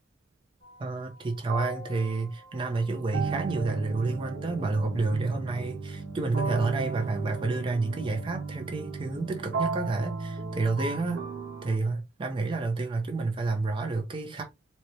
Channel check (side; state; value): left; quieter; 3.1 dB